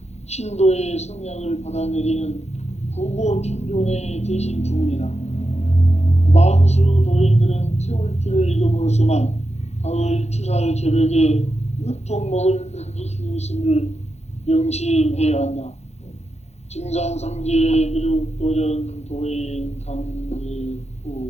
신도의 성향을 받아내리는 부고 천존의 대신 주문이다. 만수 도인들은 태울주를 읽음으로써만 가을 추살 개벽에 으통먹을 넘길 수 있음을 명심해야 한다. 증산상제 미륵도전 도인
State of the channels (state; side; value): late; right; 0.32 ms